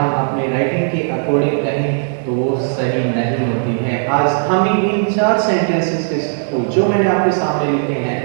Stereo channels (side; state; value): left; silent; digital silence